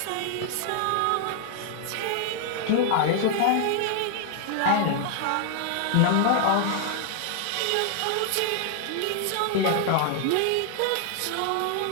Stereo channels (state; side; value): different; both; correlation 0.00